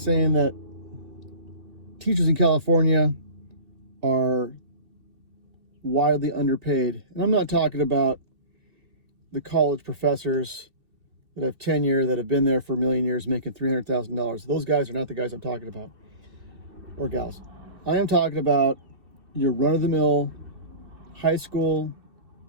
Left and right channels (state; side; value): late; left; 2.6 ms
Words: that teachers in California are widely underpaid. And I'm not talking about the college professors that have tenure, that have been there for a million years making $300,000. Those guys are not the guys I'm talking about, or gals. I am talking about your run-of-the-mill high school